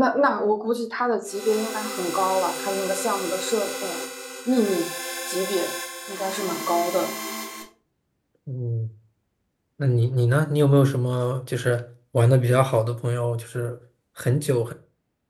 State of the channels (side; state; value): both; identical; correlation 1.00